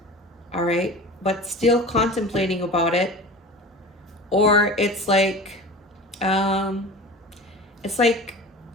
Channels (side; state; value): both; normal; correlation 0.36